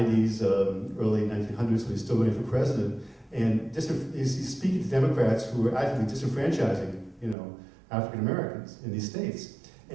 early 1900s, when he's still running for president, and he's speaking to Democrats who are actively disenfranchising, African Americans in these states.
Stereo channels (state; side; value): drops out; left; at 7.4 s